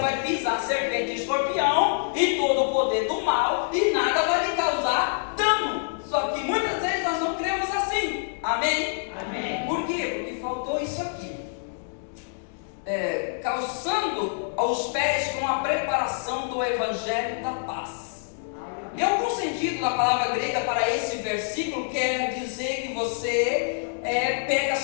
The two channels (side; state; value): right; silent; digital silence